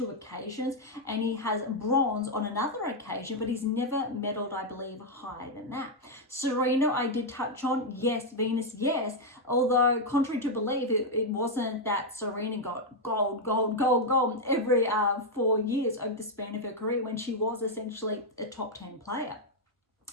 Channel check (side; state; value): both; normal; correlation -0.01